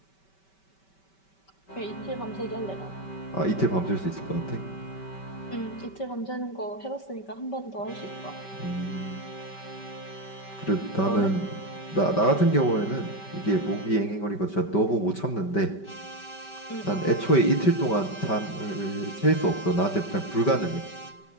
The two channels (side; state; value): right; late; 5.2 ms